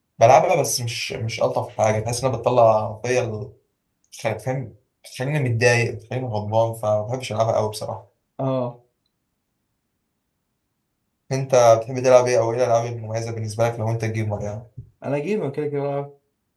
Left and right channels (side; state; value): both; identical; correlation 1.00